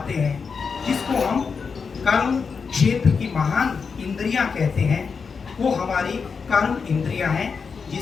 हैं, जिसको हम कर्म क्षेत्र की महान इंद्रियां कहते हैं, वो हमारी कर्म इंद्रियां हैं,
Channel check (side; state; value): right; quieter; 5.5 dB